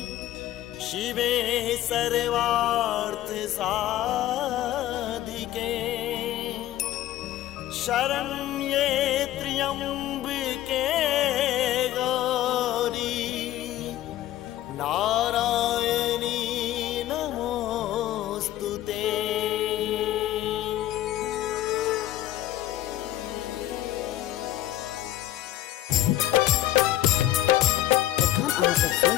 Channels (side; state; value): right; quieter; 13.7 dB